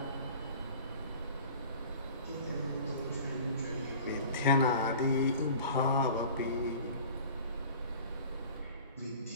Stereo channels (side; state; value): both; inverted; correlation -0.43